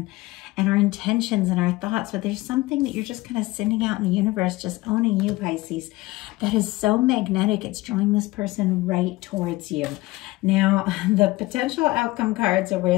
our intentions and our thoughts. But there's something that you're just kind of sending out in the universe, just owning you, Pisces, that is so magnetic. It's drawing this person right towards you. Now, the potential outcome cards are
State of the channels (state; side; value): quieter; right; 20.0 dB